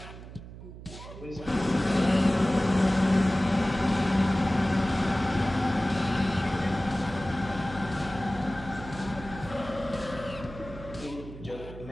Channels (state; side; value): noise; right; hum, 14 dB below the sound